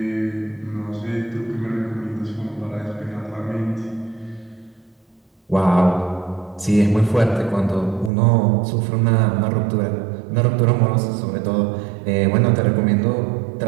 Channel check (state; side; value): drops out; left; at 8.1 s